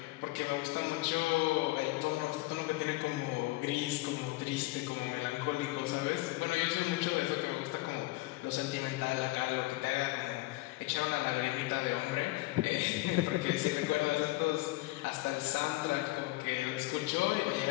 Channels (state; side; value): quieter; right; 20.4 dB